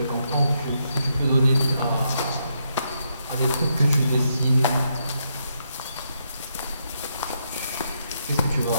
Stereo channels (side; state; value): both; inverted; correlation -0.79